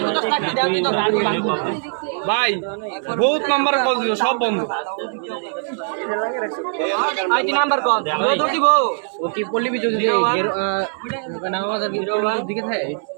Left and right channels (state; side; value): silent; left; digital silence